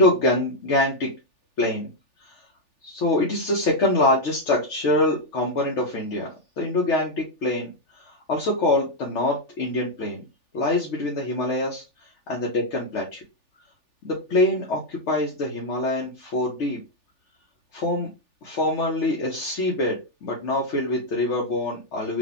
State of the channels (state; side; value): late; right; 3.4 ms